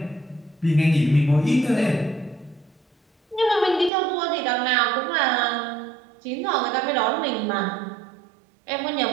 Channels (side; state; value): left; drops out; at 3.9 s